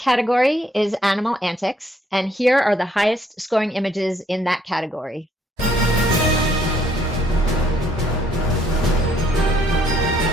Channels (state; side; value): normal; both; correlation 0.67